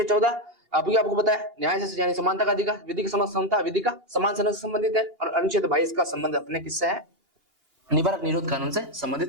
14 आपको पता है न्याय से यानी समानता का अधिकार, विधि की समता, विधि का समान से संबंधित है, और अनुच्छेद 22 का संबंध अपने किससे है? निवारक निरोध कानून से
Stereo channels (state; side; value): late; left; 2.8 ms